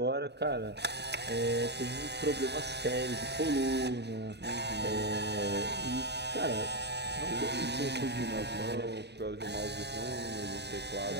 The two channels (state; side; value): late; left; 0.49 ms